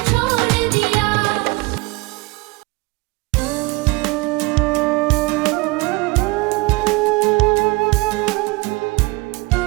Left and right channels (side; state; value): left; quieter; 24.3 dB